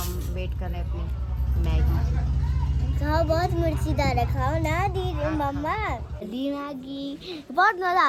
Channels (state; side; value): identical; both; correlation 1.00